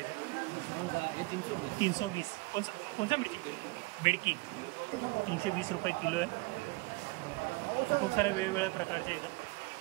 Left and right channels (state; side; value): quieter; left; 24.4 dB